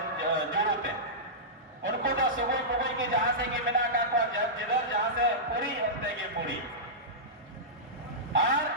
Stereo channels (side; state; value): both; normal; correlation -0.15